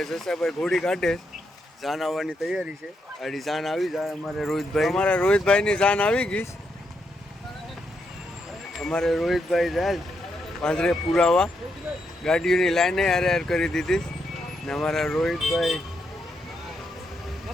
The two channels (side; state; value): both; normal; correlation 0.80